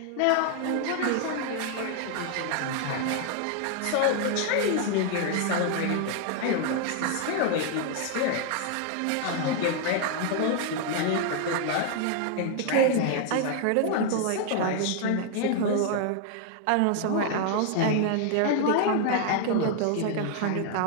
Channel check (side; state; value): both; different; correlation 0.00